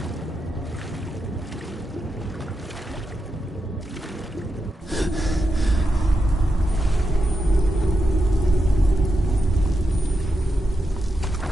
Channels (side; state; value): both; normal; correlation 0.87